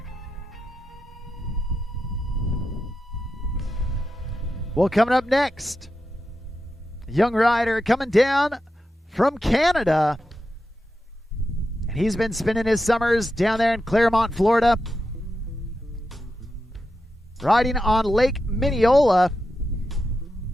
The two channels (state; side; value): normal; both; correlation 0.89